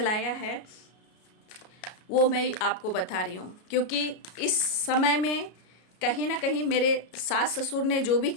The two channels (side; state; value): right; late; 33 ms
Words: है, वो मैं आपको बता रही हूँ। क्योंकि इस समय में कहीं ना कहीं मेरे सास ससुर ने जो भी